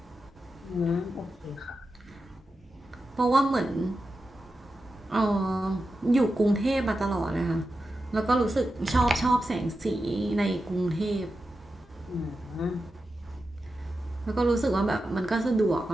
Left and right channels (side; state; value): both; normal; correlation 0.90